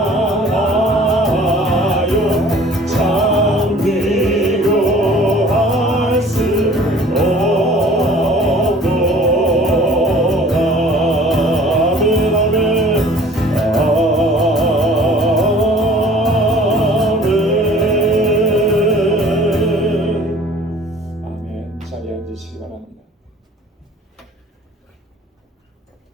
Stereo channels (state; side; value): normal; both; correlation 0.49